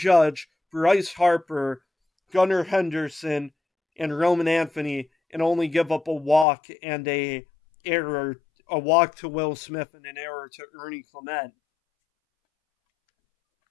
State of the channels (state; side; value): drops out; right; at 6.5 s